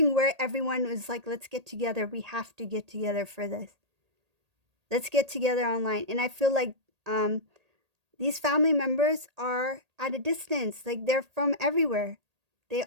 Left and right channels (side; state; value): left; late; 1.8 ms